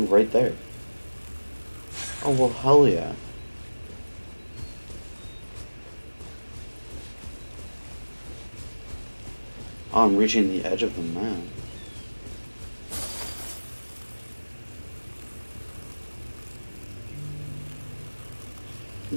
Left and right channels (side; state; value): both; inverted; correlation -1.00